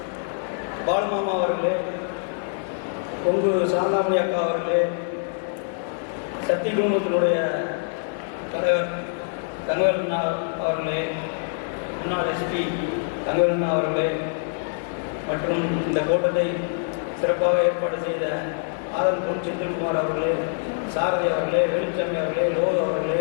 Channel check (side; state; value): right; silent; 62 dB below the other